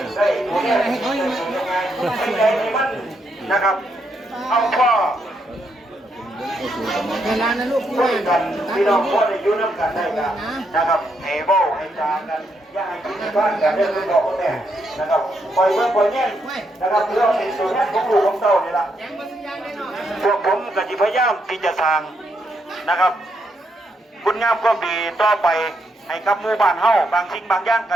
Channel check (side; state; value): both; normal; correlation 0.78